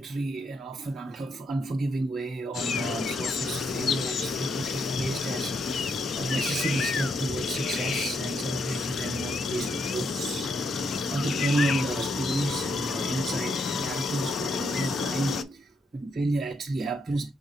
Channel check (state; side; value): normal; both; correlation 0.77